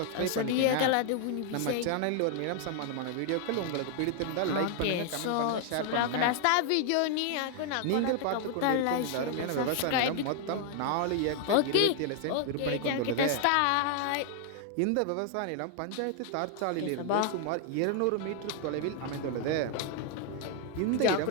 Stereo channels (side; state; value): both; different; correlation 0.00